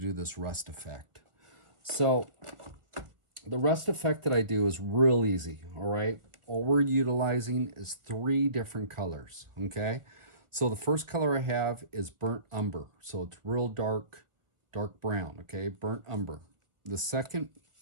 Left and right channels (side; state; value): left; late; 1.6 ms